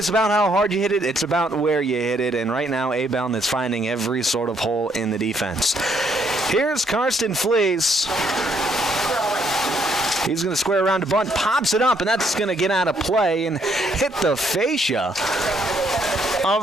about how hard you hit it, it's about where you hit it. And right now, A-Bound is finding every sort of hole in the defense. Here's Karsten Fleece. He's going to square around to bunt, pops it up, and that's going to get out of play and hit the fascia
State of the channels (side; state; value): both; normal; correlation 0.70